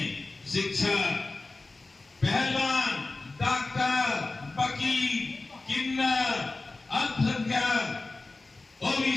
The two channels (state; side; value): quieter; right; 3.4 dB